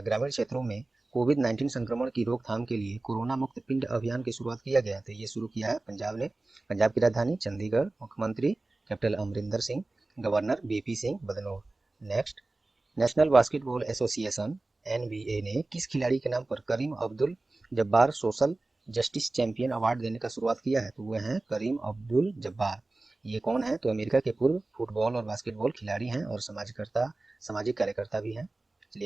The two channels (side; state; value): left; quieter; 3.1 dB